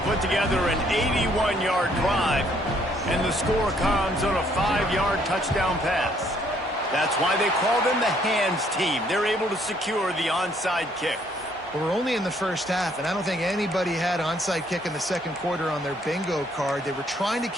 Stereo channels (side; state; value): both; normal; correlation 0.66